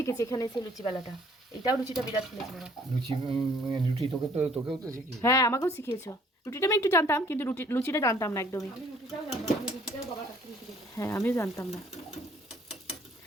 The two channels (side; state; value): both; normal; correlation 0.60